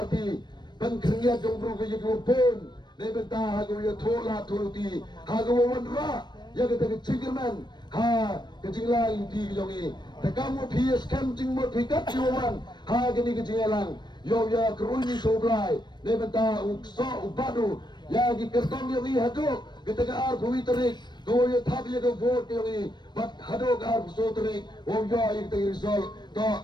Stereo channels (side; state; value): right; late; 0.21 ms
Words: Pan keringat yang bru ke yang pun. Ne benta ha go ya thola tholuti. Ha go wanra ya ke jingkermen. Ha kijing lai ti ke yang ni. Tekam mo PS kam jing mo pikat jowan. Ha kini kijing lang. Yo ya kerun ni sebelah. Ne benta ukso ubadu. Ya di kertong yang ni haduk kita ke arah bumi terik kau ya thap ya ke vote yang ni but haduk arah bumi terik wong ya yang kita result